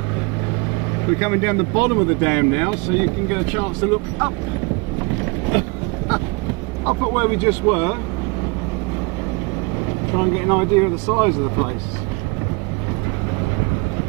We're coming down the bottom of the dam now, so you can get a chance to look up. Up at where we just were. Try and get an idea of the size of the place.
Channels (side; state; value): left; quieter; 27.7 dB